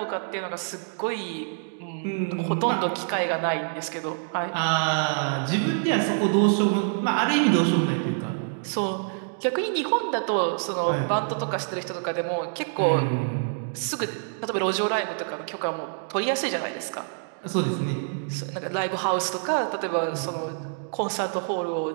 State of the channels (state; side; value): silent; left; digital silence